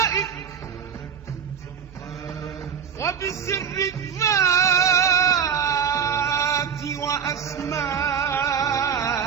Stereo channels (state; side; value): quieter; left; 7.4 dB